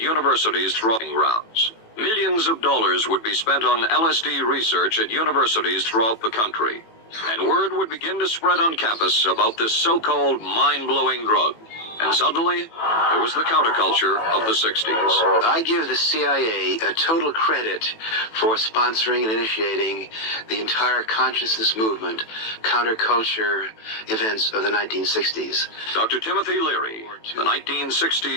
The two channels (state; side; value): late; right; 18 ms